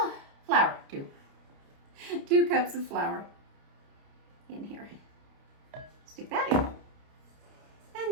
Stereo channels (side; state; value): left; late; 29 ms